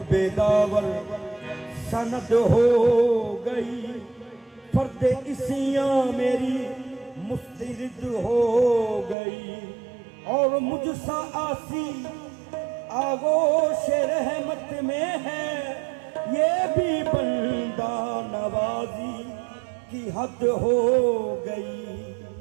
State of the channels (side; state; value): left; drops out; at 9.2 s